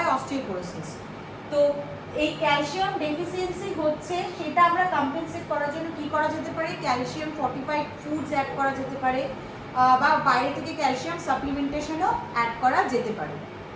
অস্টিওপোরোসিস। তো এই ক্যালসিয়াম ডেফিসিয়েন্সি হচ্ছে, সেটা আমরা কম্পেনসেট করার জন্য কি করা যেতে পারে? ক্যালসিয়াম ফর্টিফাইড ফুডস অ্যাড করা যেতে পারে, বা বাইরে থেকে ক্যালসিয়াম সাপ্লিমেন্টেশনও অ্যাড করা যেতে পারে।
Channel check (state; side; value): identical; both; correlation 1.00